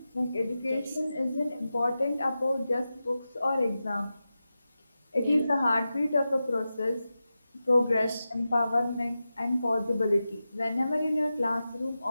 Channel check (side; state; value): both; inverted; correlation -0.92